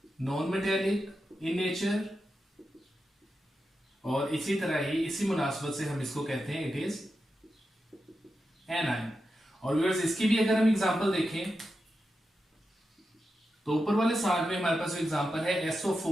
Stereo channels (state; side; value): normal; both; correlation 0.89